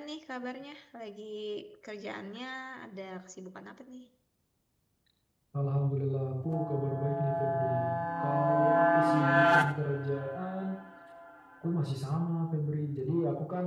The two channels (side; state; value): both; identical; correlation 1.00